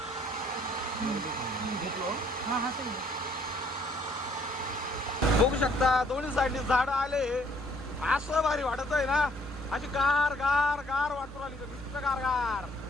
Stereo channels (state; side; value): normal; both; correlation 0.64